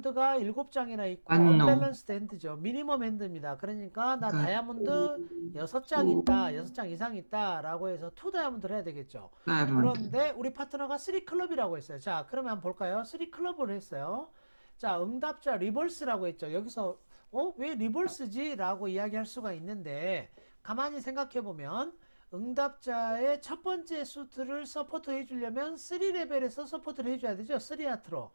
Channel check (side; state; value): both; inverted; correlation -1.00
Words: 7장이나 있고 언밸런스드 핸드죠. 미니멈 핸드입니다. 그러니까 나 다이아몬드 6장 있다. 6장 이상 있다. 라고 해서 2 다이아몬드를 해야 되겠죠. 그런데 우리 파트너가 3 클럽이라고 했어요. 자, 그러면 한번 볼까요? 3 클럽을 했어요. 자, 응답자 리버스라고 했죠. 여기서 왜 리버스지? 라고 이야기할 수가 있는데 가만히 생각해 보면 응답자의 첫 번째 수트를 서포트 해주려면 3레벨에서 서포트를 해줘야 되죠. 3하트로.